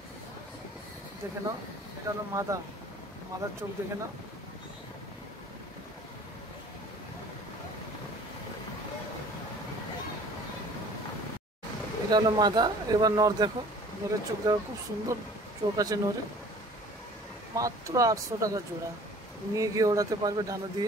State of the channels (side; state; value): both; normal; correlation 0.49